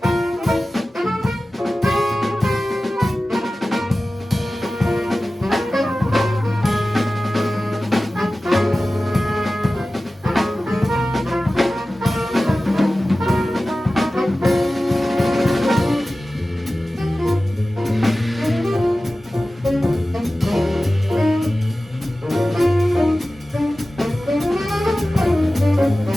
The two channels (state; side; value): normal; both; correlation 0.96